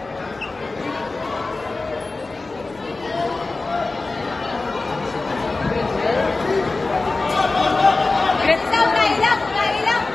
Great down, nailang!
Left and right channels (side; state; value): right; quieter; 3.5 dB